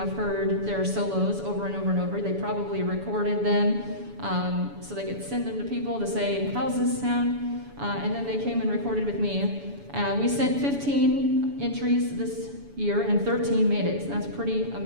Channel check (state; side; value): late; left; 7.0 ms